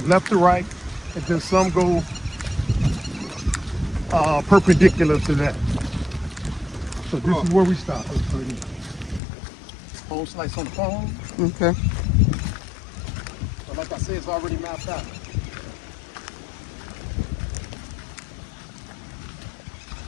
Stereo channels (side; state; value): right; drops out; at 9.2 s